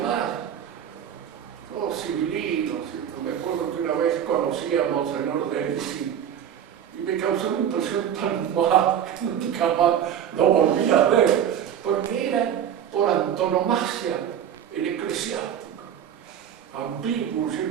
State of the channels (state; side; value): quieter; left; 9.4 dB